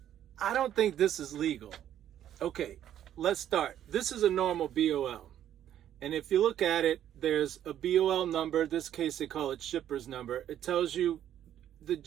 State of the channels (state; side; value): quieter; left; 10.9 dB